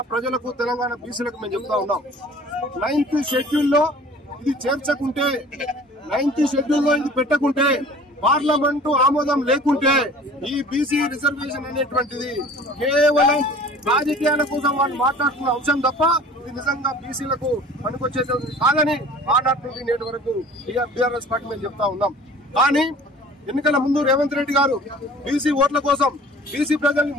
ప్రజలకు తెలంగాణ బీసీలకు మేము చెప్తా ఉన్నాం. 9th షెడ్యూల్లో ఇది చేర్చకుంటే 9th షెడ్యూల్లో ఇది పెట్టకుంటే పార్లమెంటు ఆమోదం లేకుంటే ఈ బీసీ రిజర్వేషన్ అనేటువంటిది కేవలం రాజకీయాల కోసం వాళ్ళు మాట్లాడుతున్న అంశం తప్ప ఇది నిజంగా బీసీలకు పనికొచ్చేది కాదని ఆనాటి నుండి నేటి వరకు టీఆర్ఎస్ పార్టీ మేము చెప్తా ఉన్నాం. కానీ ఎన్నికల ముందు రేవంత్ రెడ్డి గారు బీసీ ఓట్ల కోసం బీసీ ప్రజల్ని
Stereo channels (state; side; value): normal; both; correlation 0.47